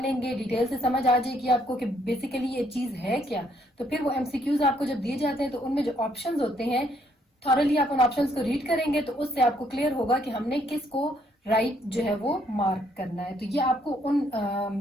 लेंगे, डिटेल से समझ आ जाएगी आपको कि बेसिकली ये चीज है क्या, तो फिर वो एमसीक्यूज आपको जब दिए जाते हैं तो उनमें जो ऑप्शंस होते हैं, थॉरली आप उन ऑप्शंस को रीड करेंगे तो उससे आपको क्लियर होगा कि हमने किसको राइट जो है वो मार्क करना है। तो ये आपको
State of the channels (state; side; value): normal; both; correlation 0.69